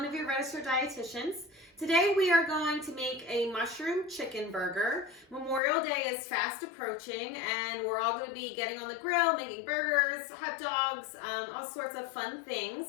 of your registered dietitians. Today we are going to make a mushroom chicken burger. Memorial Day is fast approaching and we're all going to be getting on the grill, making burgers, hot dogs, all sorts of fun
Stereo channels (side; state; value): right; drops out; at 5.6 s